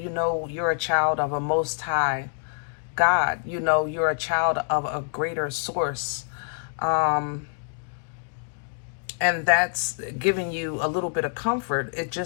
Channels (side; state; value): right; silent; digital silence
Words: know you're a child of a Most High God. You know you're a child of a greater source. And that's giving you a little bit of comfort. It